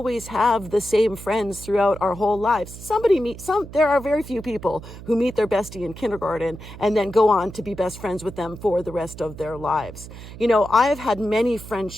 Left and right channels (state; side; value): noise; right; hum, 14 dB below the sound